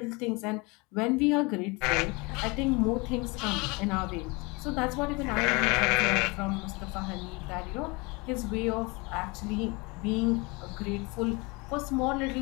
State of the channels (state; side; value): quieter; right; 26.8 dB